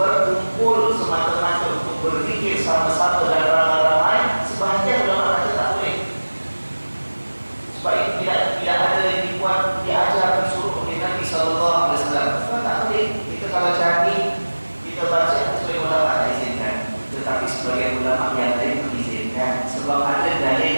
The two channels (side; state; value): both; inverted; correlation -1.00